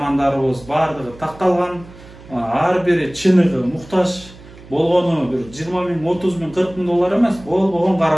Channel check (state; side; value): noise; right; hum, 20 dB below the sound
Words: bardygy taktalgan, har biri çınıgı muhtaç болгону bir 20 ming, 30 ming, 40 ming dolar emas, болгон